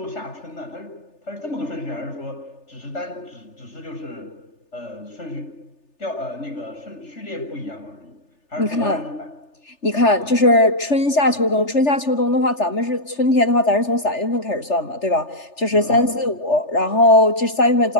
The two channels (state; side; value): late; right; 3.4 ms